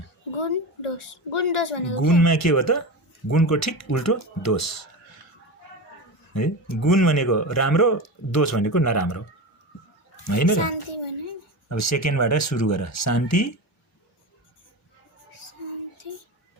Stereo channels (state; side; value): normal; both; correlation 0.24